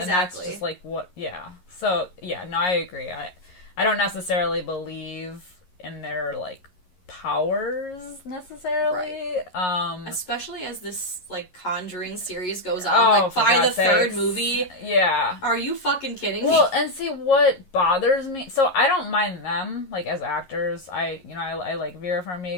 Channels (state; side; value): late; right; 11 ms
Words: And that's just like what. So no, I agree. I don't necessarily believe in their, like, powers necessarily. Right. Especially as this, like, Conjuring series goes on. Like, by the third movie. Yeah. Are you fucking kidding me? Well, and see, what bothers me... So, I don't mind them, like, as actors. I like Vera